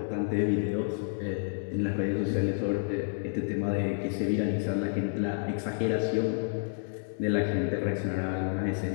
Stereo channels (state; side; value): silent; right; digital silence